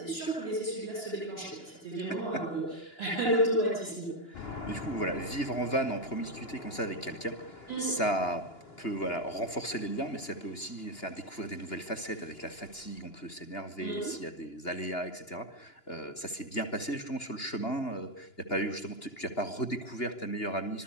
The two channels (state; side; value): late; right; 2.9 ms